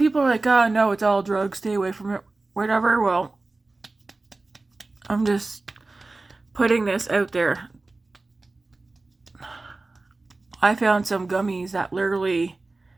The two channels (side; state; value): left; quieter; 3.3 dB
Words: like, oh no, it's all drugs, stay away from it, whatever. Well, I'm just putting this out there. I found some gummies that literally